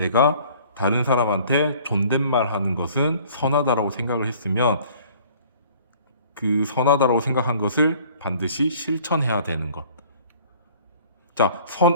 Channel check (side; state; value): both; inverted; correlation -0.53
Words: 다른 사람한테 존댓말 하는 것은 선하다라고 생각을 했으면 그 선하다라고 생각한 것을 반드시 실천해야 되는 것. 자,